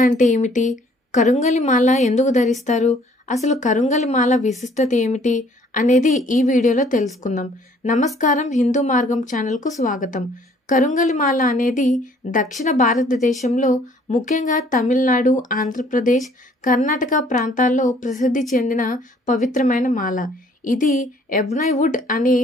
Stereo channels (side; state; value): both; normal; correlation 0.59